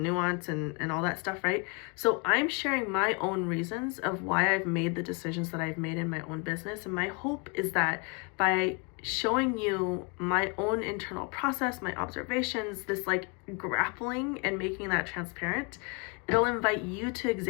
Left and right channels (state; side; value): quieter; right; 32.6 dB